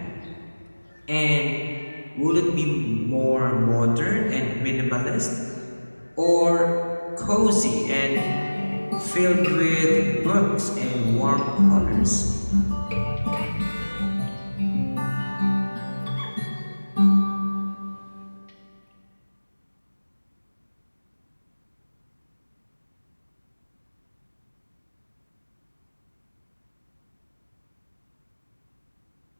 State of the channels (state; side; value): inverted; both; correlation -1.00